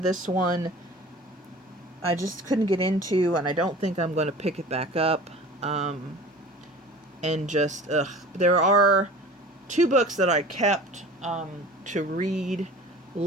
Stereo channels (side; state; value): both; normal; correlation 0.41